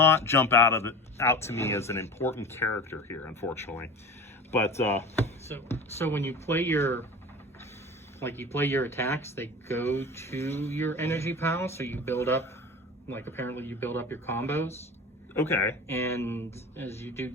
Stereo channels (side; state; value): both; normal; correlation 0.34